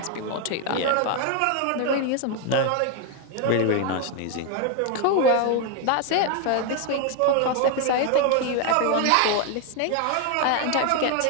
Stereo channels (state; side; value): different; both; correlation 0.01